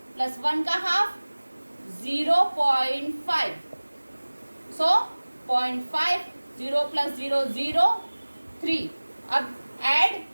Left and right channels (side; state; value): both; inverted; correlation -1.00